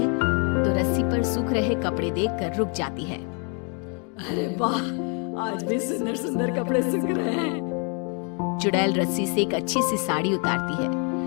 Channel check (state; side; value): quieter; right; 37.2 dB